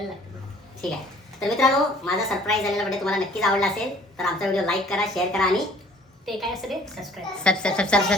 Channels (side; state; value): both; normal; correlation 0.55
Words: लागतं. ठीक आहे. तर मित्रांनो माझा सरप्राईज झालेला व्हिडिओ तुम्हाला नक्कीच आवडला असेल तर आमचा व्हिडिओ लाईक करा शेअर करा आणि ते काय असतं रे? सबस्क्राईब.